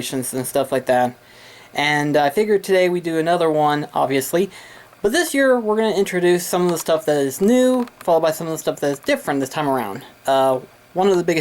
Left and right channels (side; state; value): both; identical; correlation 1.00